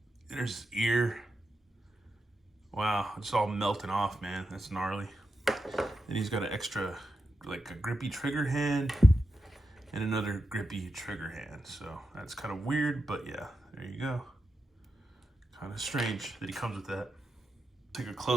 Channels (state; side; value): normal; both; correlation 0.88